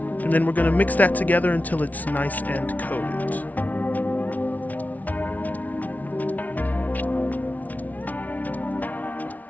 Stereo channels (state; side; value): late; right; 0.074 ms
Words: And then we're going to mix that together until it's nice and coated.